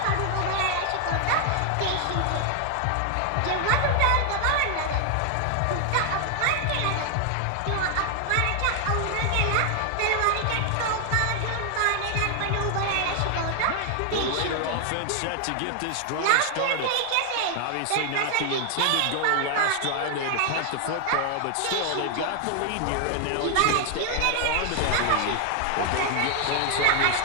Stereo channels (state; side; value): different; both; correlation 0.00